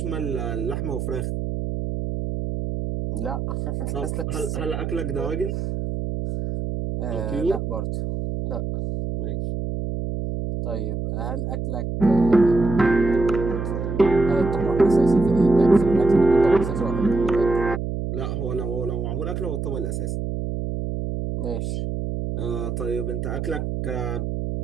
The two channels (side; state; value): right; noise; hum, 3 dB below the sound